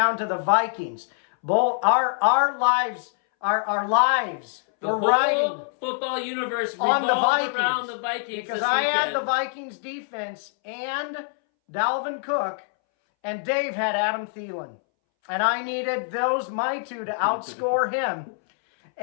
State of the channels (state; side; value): silent; right; 62 dB below the other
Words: to the Vikings. Our lives The whole football universe revolved around the Vikings. Because I had the Vikings defense and Dalvin Cook, and Dave had Adam Thielen. And I needed my two to outscore him.